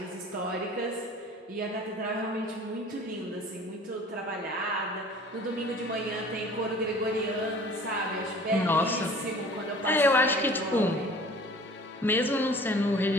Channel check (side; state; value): both; normal; correlation 0.46